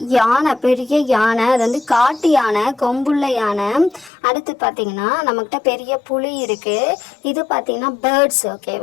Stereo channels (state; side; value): drops out; right; at 4.1 s